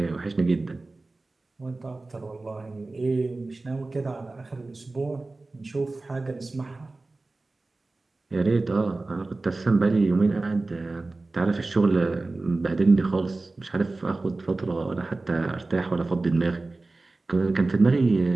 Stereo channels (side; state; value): left; quieter; 3.3 dB